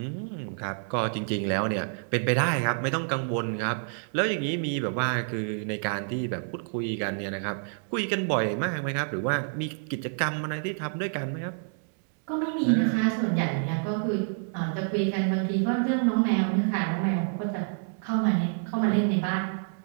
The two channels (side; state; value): left; silent; 59 dB below the other